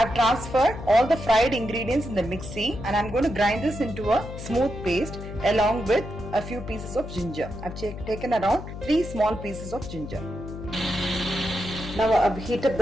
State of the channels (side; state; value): left; noise; hum, 10 dB below the sound